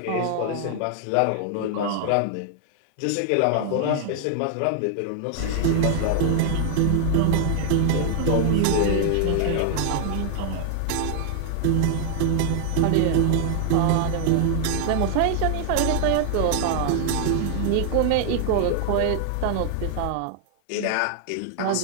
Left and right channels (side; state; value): both; different; correlation 0.00